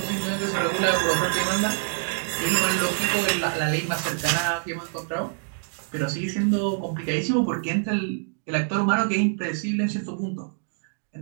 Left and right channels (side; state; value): left; silent; 61 dB below the other